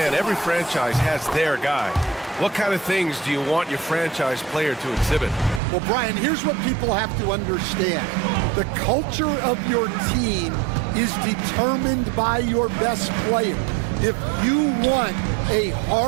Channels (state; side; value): drops out; left; at 5.6 s